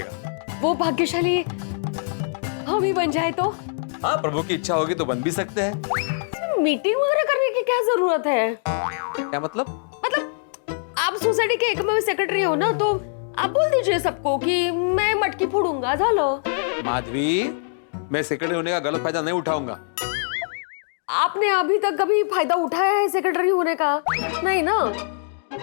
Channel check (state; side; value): silent; right; digital silence